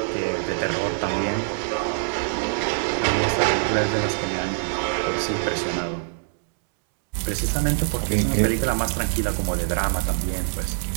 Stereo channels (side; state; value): left; silent; 63 dB below the other